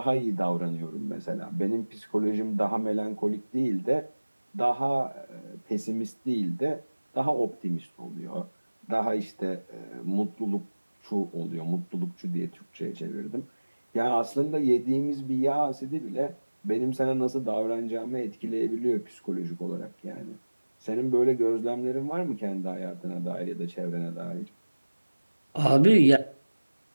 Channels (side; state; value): both; inverted; correlation -1.00